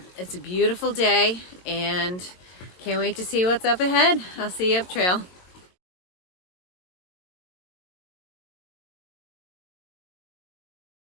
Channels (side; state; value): right; late; 22 ms